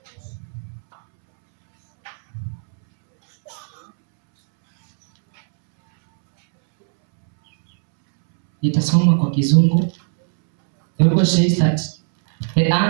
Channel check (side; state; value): left; silent; 67 dB below the other